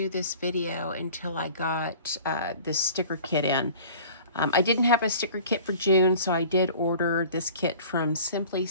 this video until I got this sticker kit in. I didn't have a sticker kit for June, so I did order this kit from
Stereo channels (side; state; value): both; inverted; correlation -0.46